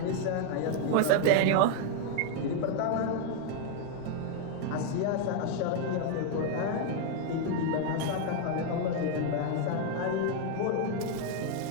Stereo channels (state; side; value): different; both; correlation 0.00